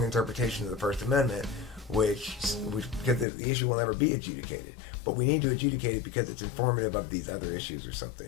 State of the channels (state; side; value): drops out; right; at 3.2 s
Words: interpretation of the First Amendment, which because the issue will never be adjudicated. But we need to adjudicate it because it's informative of these other issues or